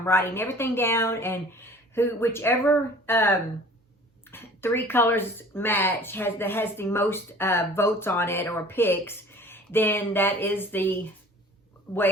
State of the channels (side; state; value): both; normal; correlation 0.47